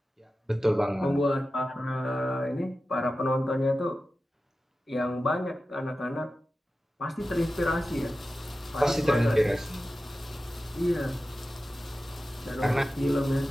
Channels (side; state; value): both; normal; correlation 0.94